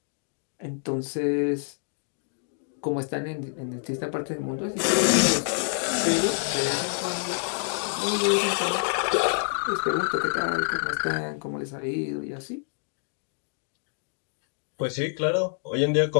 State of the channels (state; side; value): silent; right; digital silence